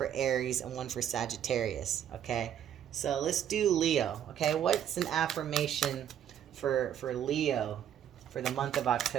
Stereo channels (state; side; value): quieter; left; 9.8 dB